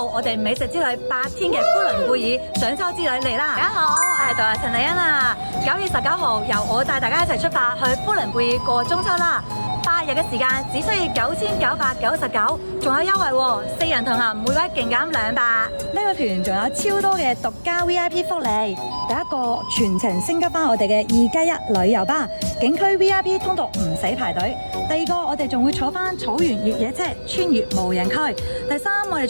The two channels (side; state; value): both; inverted; correlation -1.00